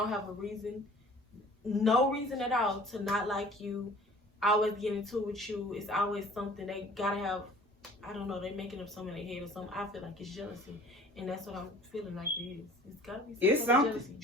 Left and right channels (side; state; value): both; normal; correlation 0.48